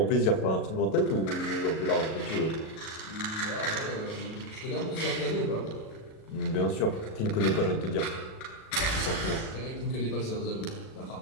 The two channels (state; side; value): late; right; 37 ms